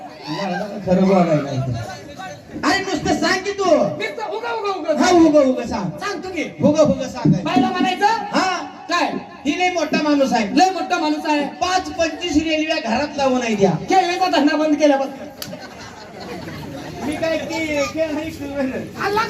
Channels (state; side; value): identical; both; correlation 1.00